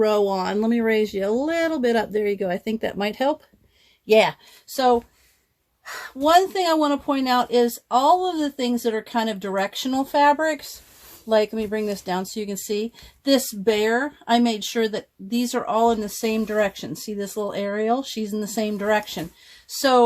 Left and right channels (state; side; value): identical; both; correlation 1.00